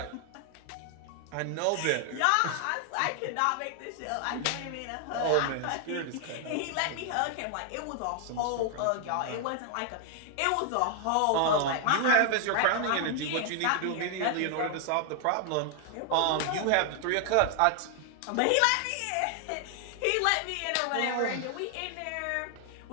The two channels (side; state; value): both; different; correlation 0.00